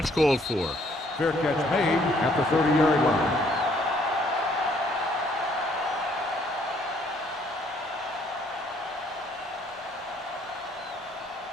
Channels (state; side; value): normal; both; correlation 0.64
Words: called for. Fair catch made at the 30-yard line.